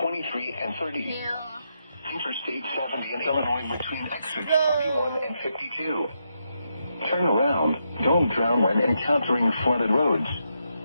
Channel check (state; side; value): inverted; both; correlation -0.82